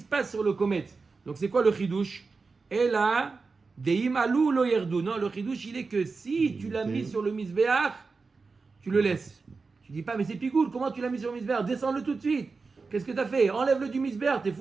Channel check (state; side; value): quieter; left; 4.4 dB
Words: passe sur le komet. Donc, c'est quoi le chidouche? Et là, deim alou lo yerdu. Non, le chidouche, il est que si tu l'as mis sur le misbeach, tu le laisses. Tu dis pas, mais c'est pigoul, comment tu l'as mis sur le misbeach? Descends-le tout de suite. Qu'est-ce que tu as fait? Enlève-le du misbeach. T'es